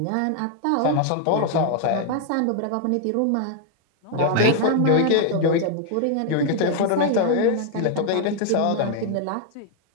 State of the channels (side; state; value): both; different; correlation 0.00